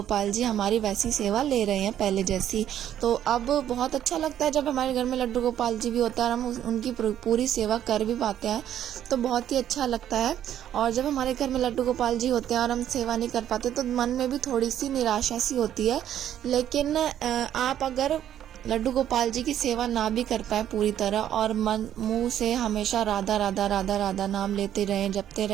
जी हमारी वैसी सेवा ले रहे हैं पहले जैसी। तो अब बहुत अच्छा लगता है जब हमारे घर में लड्डू गोपाल जी भी होता है और हम उनकी पूरी सेवा कर भी पाते हैं, तो बहुत ही अच्छा लगता है। और जब हमारे घर में लड्डू गोपाल जी होते हैं और हम सेवा नहीं कर पाते तो मन में भी थोड़ी सी निराशा सी होती है। लेकिन आप अगर लड्डू गोपाल जी की सेवा ना भी कर पाए पूरी तरह और मन मुंह से हमेशा राधा राधा राधा राधा नाम लेते रहें, जपते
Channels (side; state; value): left; quieter; 10.8 dB